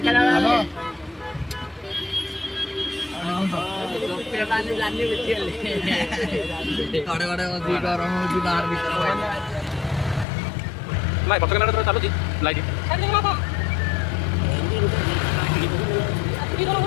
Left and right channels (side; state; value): right; drops out; at 10.2 s